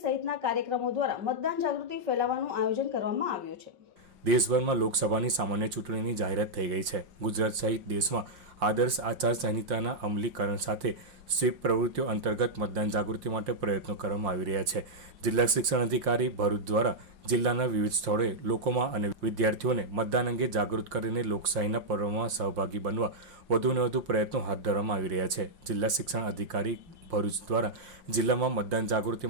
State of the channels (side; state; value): left; late; 5.7 ms